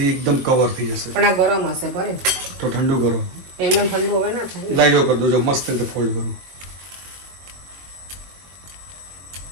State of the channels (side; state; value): left; late; 22 ms